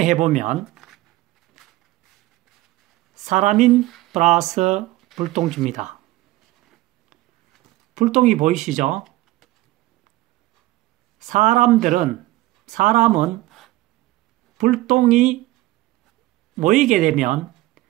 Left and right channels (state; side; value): quieter; left; 17.7 dB